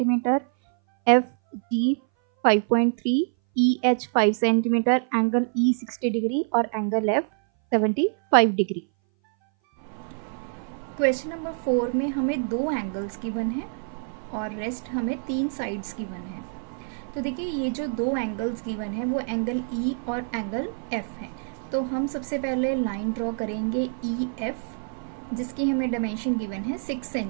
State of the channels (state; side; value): silent; left; 59 dB below the other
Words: FG 5.3, EH 5 centimetre, angle E 60 degree और angle F 75 degree. Question number 4 में हमें 2 एंगल्स गिवन है और रेस्ट हमें 3 साइड्स गिवन है। तो देखिए, ये जो 2 एंगल्स गिवन है वो एंगल E और एंगल F है। तो हम सबसे पहले लाइन ड्रॉ करेंगे EF, जिसकी हमें डायमेंशन गिवन है 6